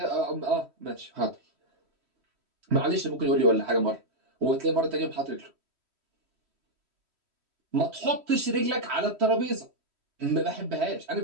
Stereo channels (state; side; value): late; left; 3.1 ms